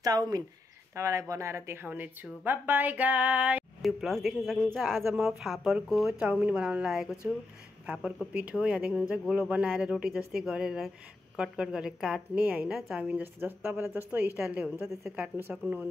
चाउमिन तपाईलाई बनाएर देखाउने छु. Bye bye guys. YouTube Vlogs देख्न सक्नुहुन्छ. आज म फापरको चाउमिन बनाउन लागेको छु. फापरको पिठो यहाँ देख्नुहुन्छ गोलो बनाएर रोटी जस्तै गरेर कट गरेर काट्ने हैन. चाउमिन जस्तो तपाईलाई जस्तो स्टाइलले हुन्छ त्यसै काट्न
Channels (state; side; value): quieter; right; 3.1 dB